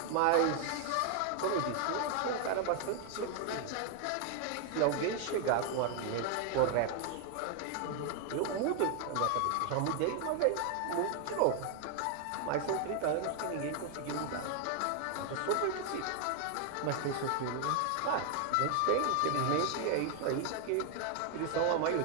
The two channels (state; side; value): different; both; correlation 0.00